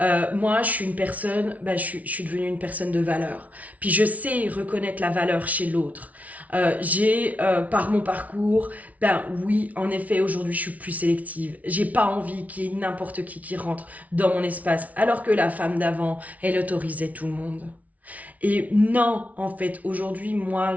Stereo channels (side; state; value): left; late; 0.070 ms